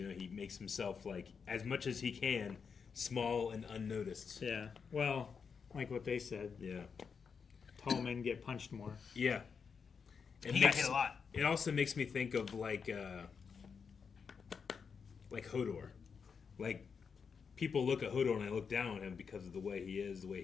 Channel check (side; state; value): right; quieter; 6.0 dB